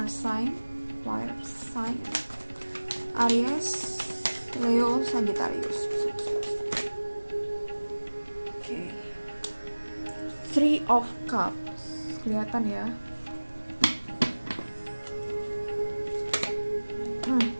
sign Aries, Leo, Sagittarius. Oke, Three of Cups, kelihatan ya.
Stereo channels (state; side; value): inverted; both; correlation -1.00